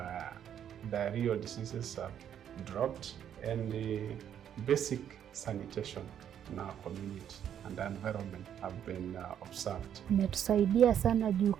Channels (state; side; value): quieter; left; 9.4 dB